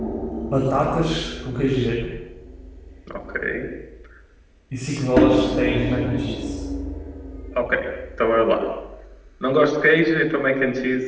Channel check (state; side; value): identical; both; correlation 1.00